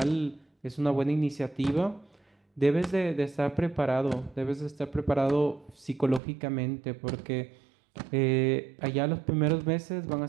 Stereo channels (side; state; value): left; drops out; at 6.2 s